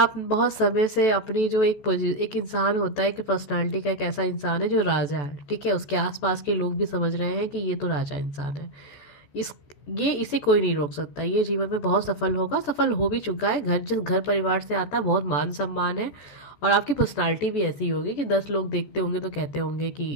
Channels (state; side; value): late; right; 14 ms